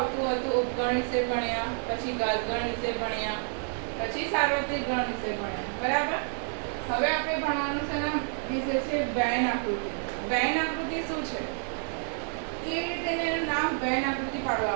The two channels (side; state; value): left; silent; 56 dB below the other